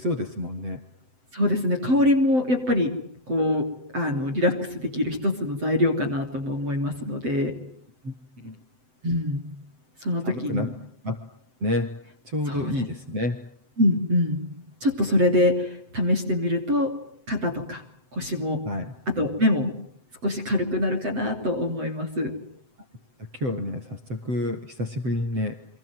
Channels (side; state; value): left; late; 7.8 ms